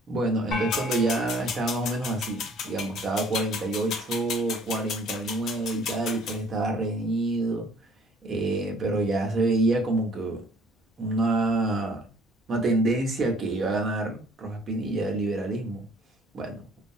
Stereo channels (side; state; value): both; normal; correlation 0.57